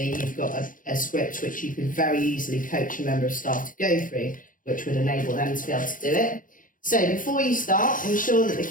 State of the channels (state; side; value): late; right; 0.39 ms